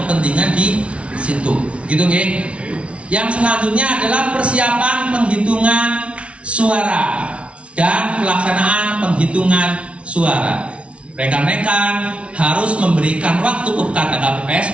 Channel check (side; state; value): left; late; 0.061 ms